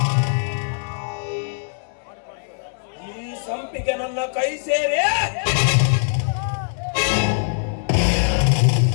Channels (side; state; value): right; silent; 64 dB below the other